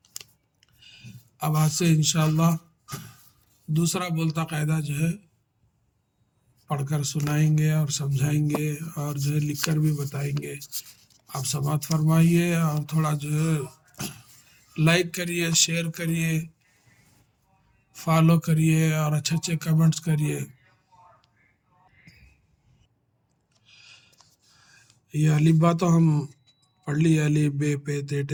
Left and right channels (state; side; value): identical; both; correlation 1.00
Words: اب آج سے انشاءاللہ دوسرا بولتا قاعدہ جو ہے پڑھ کر سنائیں گے اور سمجھائیں گے اور جو ہے لکھ کر بھی بتائیں گے۔ آپ سماعت فرمائیے اور تھوڑا جو ہے لائک کریے، شیئر کریے، فالو کریے اور اچھے اچھے کمنٹس کریے۔ یہ الف با تو ہم پڑھ لی، الف بے پے تے